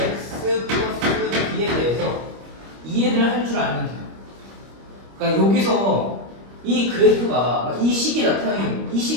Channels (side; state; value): left; late; 25 ms